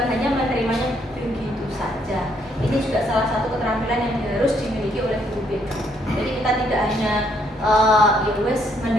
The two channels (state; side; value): normal; both; correlation 0.70